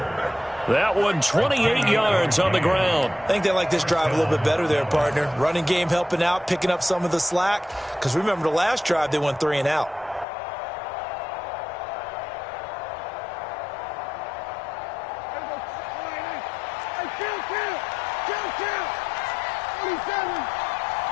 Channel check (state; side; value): drops out; right; at 10.2 s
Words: That one 28 yards on the ground. I think they like this drive a little bit better there, partner. Running game helping out, picking up some of the slack. Because remember the last drive, they went 3 and out.